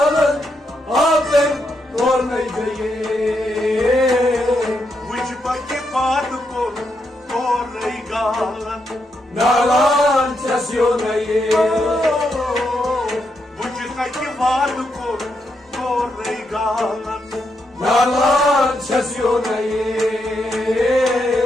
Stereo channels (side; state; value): both; normal; correlation 0.81